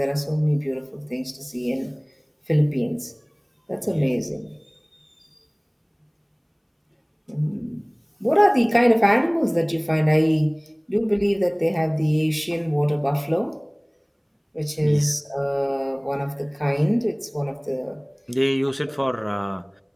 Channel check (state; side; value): identical; both; correlation 1.00